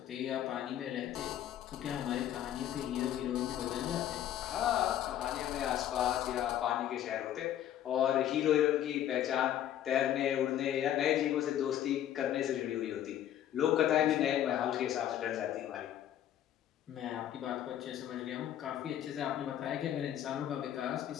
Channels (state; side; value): quieter; right; 11.3 dB